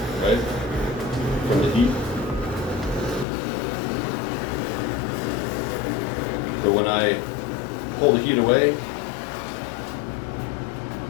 right, from the heat. But when I pull the heat away,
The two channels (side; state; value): right; drops out; at 3.2 s